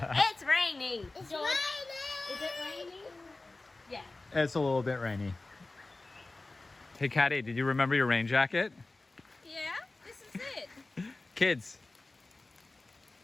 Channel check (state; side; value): quieter; right; 3.2 dB